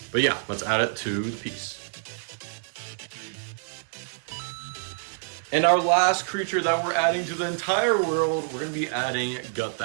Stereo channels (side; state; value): left; silent; digital silence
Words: But yeah, let's add it to the piece. And our last creature that we're adding to the entire world, we're going to be adding Gut